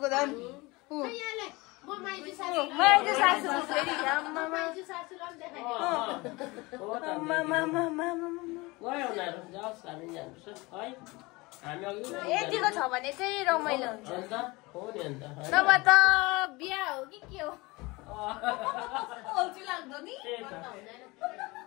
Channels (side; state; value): right; quieter; 23.6 dB